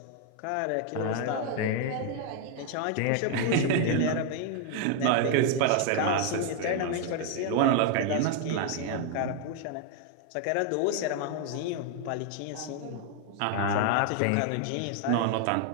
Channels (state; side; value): different; both; correlation 0.00